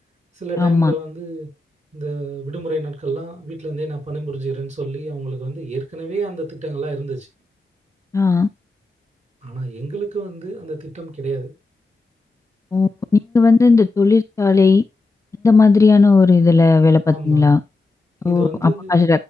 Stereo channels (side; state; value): right; quieter; 3.4 dB